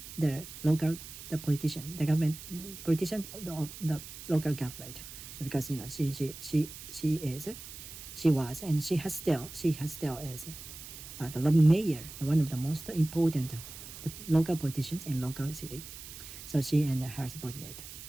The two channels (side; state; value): right; noise; hiss, 13 dB below the sound